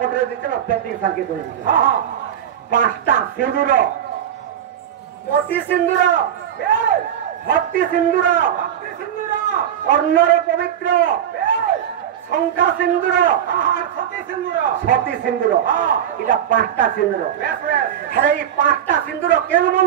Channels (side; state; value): left; quieter; 9.8 dB